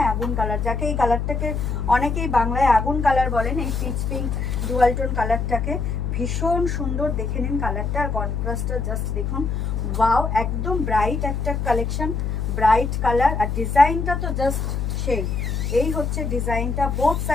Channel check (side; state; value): left; noise; hum, 1 dB below the sound